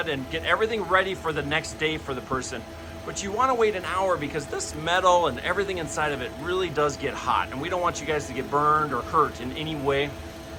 and get everything ready for the next day for the person. But you want to wait an hour because this metal and everything inside of it really does get hot, and we don't want you guys to get burned or hurt in any way.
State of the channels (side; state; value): both; identical; correlation 1.00